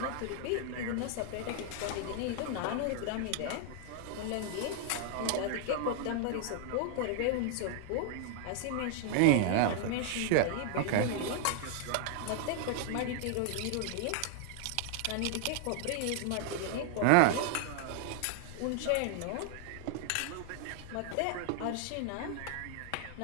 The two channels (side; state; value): both; different; correlation 0.00